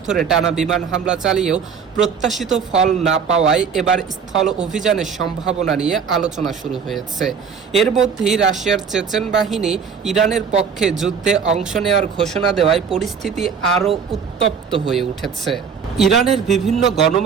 ধরে টানা বিমান হামলা চালিয়েও প্রত্যাশিত ফল না পাওয়ায় এবার স্থল অভিযানের সম্ভাবনা নিয়ে আলোচনা শুরু হয়েছে। এর মধ্যেই রাশিয়ার চেচেন বাহিনী ইরানের পক্ষে যুদ্ধে অংশ নেওয়ার ঘোষণা দেওয়ায় পরিস্থিতি আরও উত্তপ্ত হয়ে উঠেছে। ইরানের বিভিন্ন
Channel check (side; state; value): left; quieter; 6.5 dB